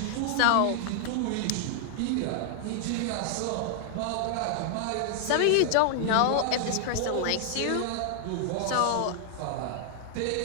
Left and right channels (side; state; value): both; different; correlation 0.00